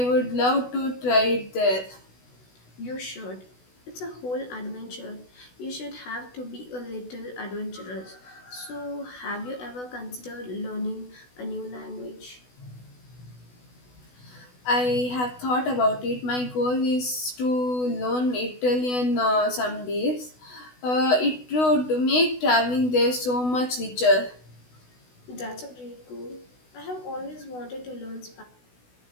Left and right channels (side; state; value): right; late; 16 ms